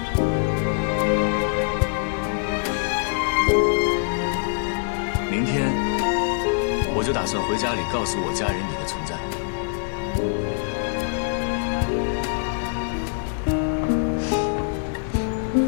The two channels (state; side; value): silent; right; 63 dB below the other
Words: 明天我就打算回家里告诉我家人你的存在。